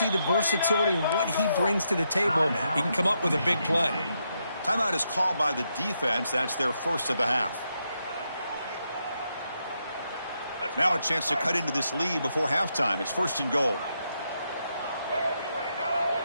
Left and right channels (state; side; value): inverted; both; correlation -0.81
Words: the versatility and what he brings to the table. He can come up with a big play. Timeout is called by the defense. That's their first of the half. Now a chance to cut into this lead before halftime. It's first and goal.